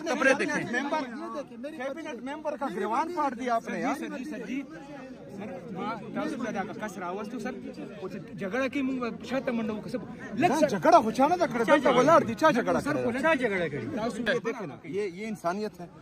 کپڑے دیکھیں کیبنٹ ممبر کا گریوان پاٹ دیا آپ نے. جھگڑا کی جھگڑا ہوچانا تھا کڑتا ولاڑ دی چا جھگڑا یہ انسانیت ہے.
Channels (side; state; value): both; identical; correlation 1.00